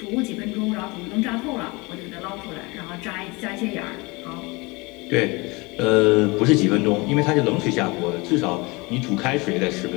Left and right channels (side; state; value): right; quieter; 25.6 dB